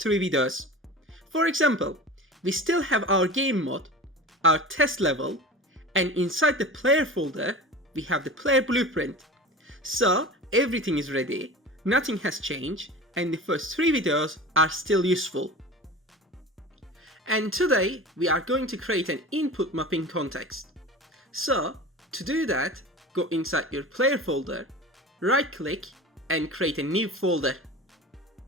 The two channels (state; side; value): normal; both; correlation 0.34